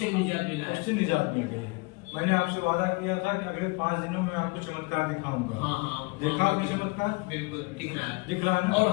निजात मिला है। उससे निजात मिल गई है। मैंने आपसे वादा किया था कि अगले 5 दिनों में आपको चमत्कार दिखाऊंगा। हाँ, देखा आपने चमत्कार? बिल्कुल दिख रहा है। दिख रहा है ना? और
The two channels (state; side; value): quieter; right; 27.5 dB